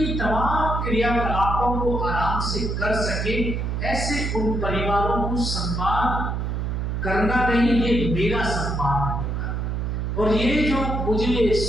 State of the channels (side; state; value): right; noise; hum, 1 dB below the sound